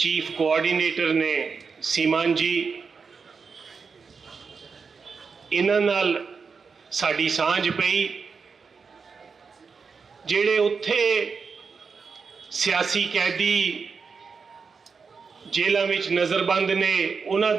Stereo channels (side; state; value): left; quieter; 5.3 dB